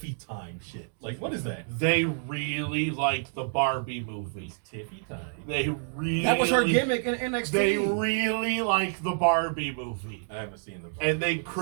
time shit? Like, what is that? They really like the Barbie movie. Tiffy time. They really... That was her gimmick in NXT. They really like the Barbie movie. I haven't seen the... And they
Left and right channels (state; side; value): silent; left; digital silence